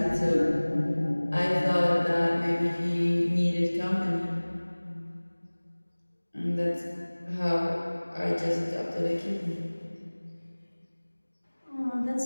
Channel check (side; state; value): both; inverted; correlation -1.00